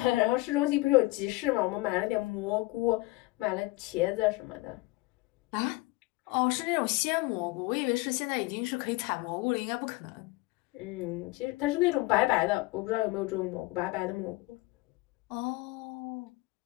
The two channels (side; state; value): right; quieter; 21.4 dB